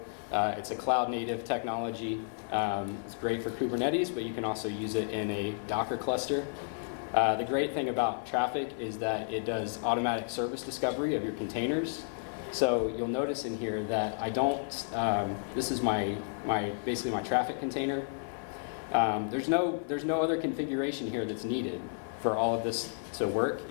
It's a cloud native technology. It's great for Kubernetes, but you can also use it in a Docker cluster. The great thing about traffic is that it does automatic service discovery of your containers. So you'll notice in here that I don't, this is basically my traffic container. There's no other configuration here that's needed for all of this to work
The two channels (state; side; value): silent; right; 56 dB below the other